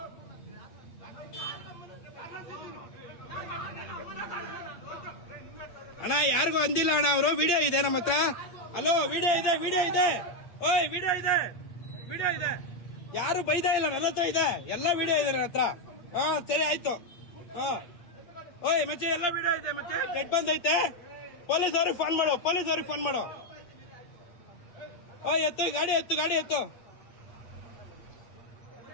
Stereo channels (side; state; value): right; late; 8.7 ms